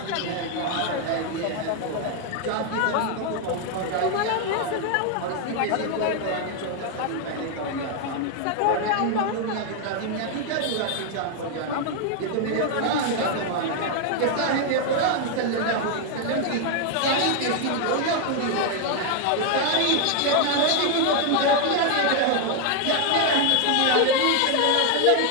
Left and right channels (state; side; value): different; both; correlation 0.00